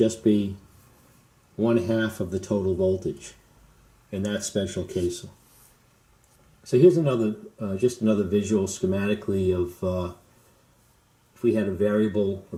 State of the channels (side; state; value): both; identical; correlation 1.00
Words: be 1/2 of the total voltage in that special case. So here's another, just another visual schematically of if we had a variable or